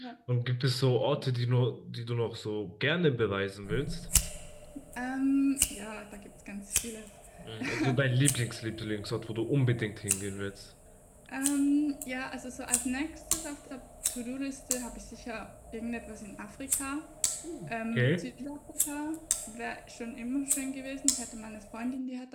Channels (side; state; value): both; identical; correlation 1.00